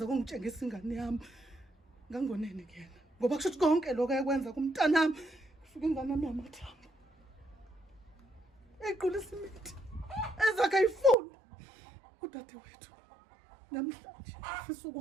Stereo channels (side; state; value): left; drops out; at 11.2 s